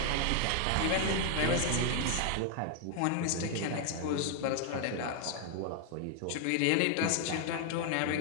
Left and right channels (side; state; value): both; different; correlation 0.00